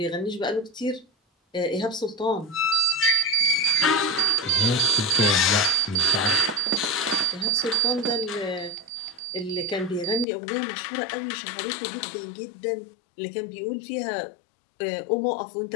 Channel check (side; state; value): right; drops out; at 10.2 s